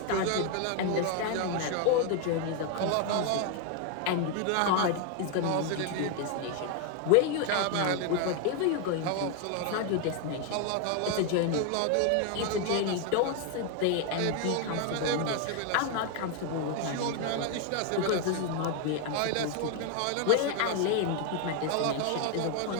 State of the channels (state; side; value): different; both; correlation 0.01